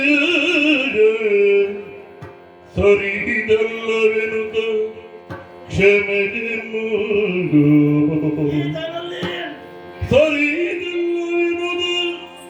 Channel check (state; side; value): identical; both; correlation 1.00